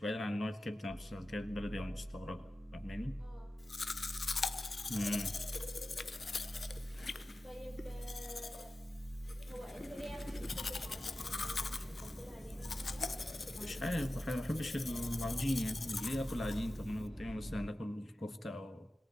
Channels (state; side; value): normal; both; correlation 0.94